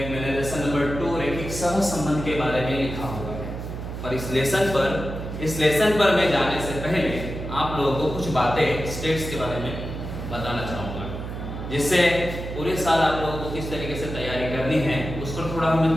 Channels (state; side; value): noise; right; hum, 7 dB below the sound